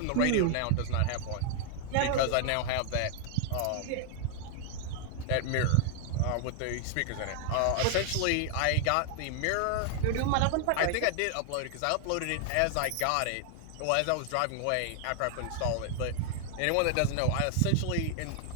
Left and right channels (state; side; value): different; both; correlation 0.00